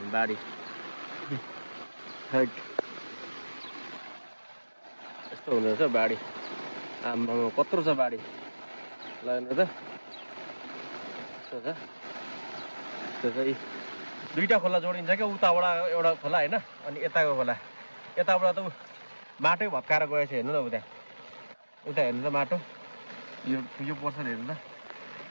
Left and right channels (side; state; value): both; inverted; correlation -1.00